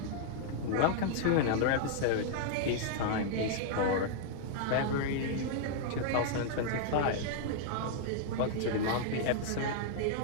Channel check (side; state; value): both; different; correlation -0.01